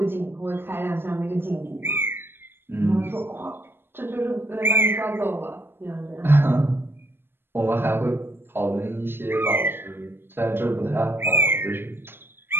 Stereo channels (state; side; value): late; left; 0.10 ms